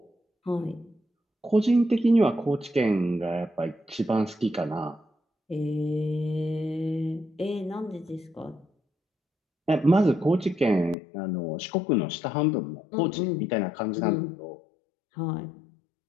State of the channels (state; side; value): drops out; right; at 11.0 s